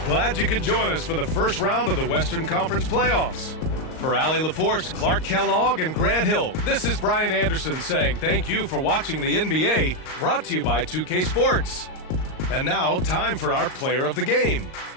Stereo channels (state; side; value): late; right; 38 ms